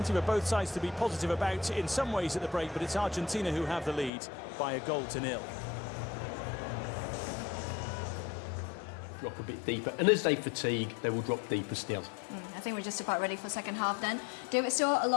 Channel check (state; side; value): drops out; right; at 4.1 s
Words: for both sides to be positive about in some ways at the break, but it's Argentina who have the lead by 1-0. Drop a bit deeper, and as they fatigue, they will drop deeper still. I think we're just about ready for second half then. David Stewart